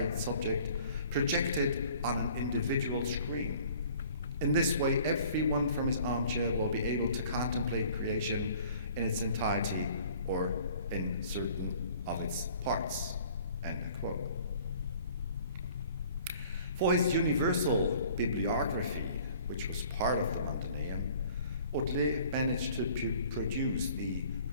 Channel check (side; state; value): both; inverted; correlation -0.52